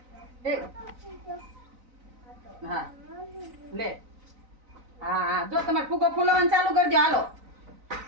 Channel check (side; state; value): left; late; 4.0 ms